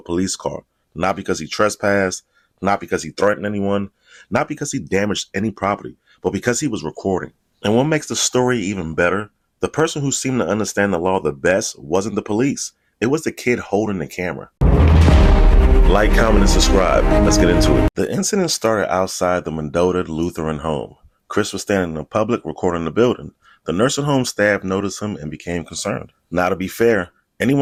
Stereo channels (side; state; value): both; identical; correlation 1.00